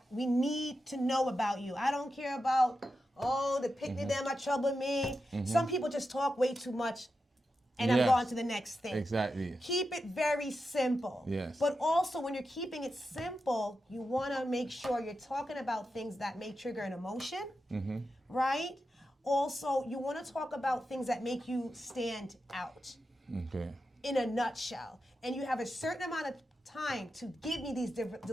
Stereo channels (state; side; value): normal; both; correlation 0.89